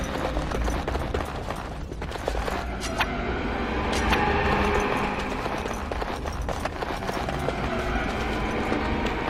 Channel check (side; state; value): both; identical; correlation 1.00